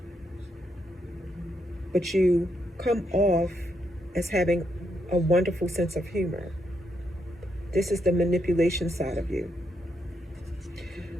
But you come off as having a wonderful sense of humor. This is the manipulation side of you.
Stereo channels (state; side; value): normal; both; correlation 0.79